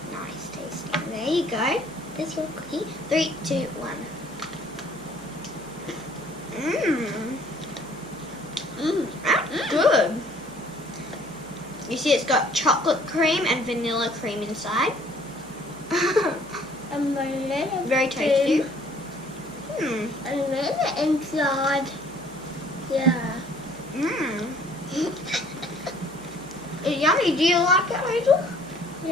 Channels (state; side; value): noise; right; hum, 23 dB below the sound